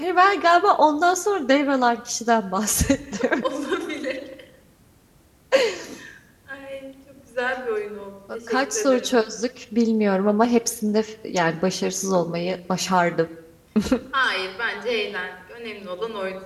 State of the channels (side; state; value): both; identical; correlation 1.00